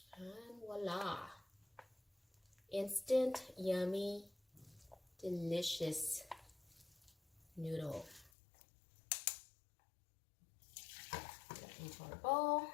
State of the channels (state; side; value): drops out; right; at 8.3 s